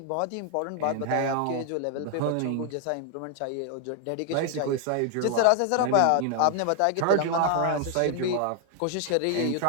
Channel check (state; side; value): different; both; correlation 0.00